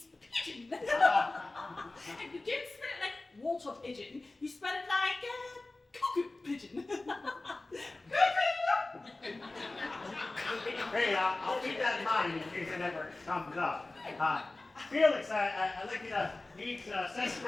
pigeon. And you don't spell it like water pigeon. You spell it like cuckoo pigeon. Hey, I'll keep that in mind in case it ever comes up. Felix, I'd like you to meet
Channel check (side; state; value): right; quieter; 3.0 dB